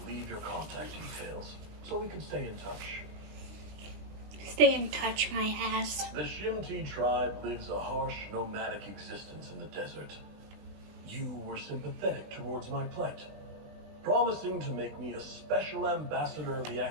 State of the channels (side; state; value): left; late; 20 ms